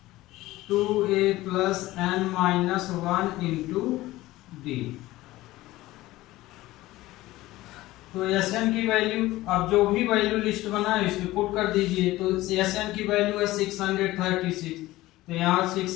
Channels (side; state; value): right; quieter; 17.4 dB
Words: 2a plus n minus 1 into d। तो SN की वैल्यू, अब जो भी वैल्यू लिस्ट बनाए इसमें पुट कर दीजिए। तो SN की वैल्यू है 636, तो यहाँ